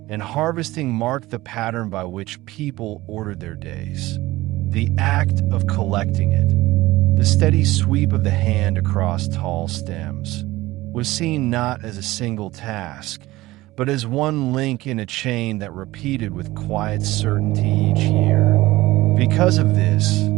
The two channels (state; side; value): quieter; left; 18.3 dB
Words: and harvesting marked the pattern by which people ordered their days. The act of collecting it, the steady sweep of the hand across tall stems, was seen not as a single task, but as one link in a chain that repeated with quiet certainty each year. Because of this,